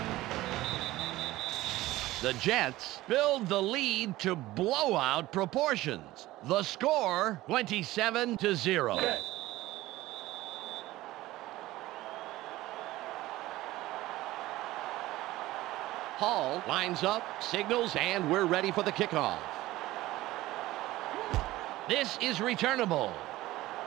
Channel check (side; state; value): left; quieter; 17.2 dB